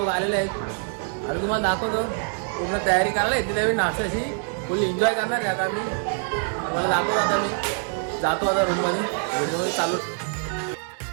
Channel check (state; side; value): silent; left; 57 dB below the other